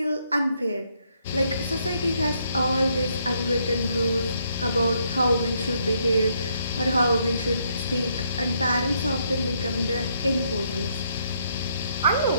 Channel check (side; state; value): both; inverted; correlation -0.73